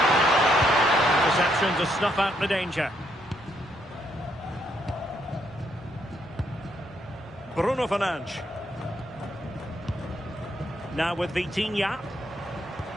Interception to snuff out the danger. Bruno Fernandes. Now with Vitinha.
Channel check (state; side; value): normal; both; correlation 0.75